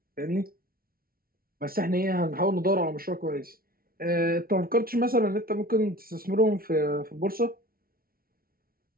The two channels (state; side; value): late; left; 0.43 ms